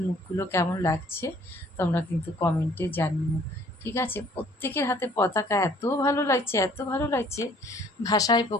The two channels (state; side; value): normal; both; correlation 0.58